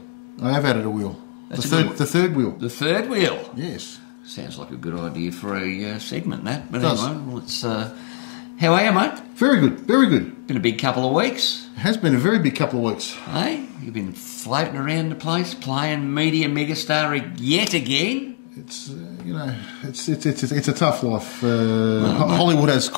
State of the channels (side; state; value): right; silent; digital silence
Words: I have added a wheel. The third wheel. The third wheel? Yes. Sounds like a good idea for a segment, that. But Does. anyway, let's... how are you, mate? Very good, very good. Been a big couple of weeks. It has been a very big couple of weeks. Hey, you've been floating around the place, playing media megastar yet again. It's you know, it's a tough life. Hollywood has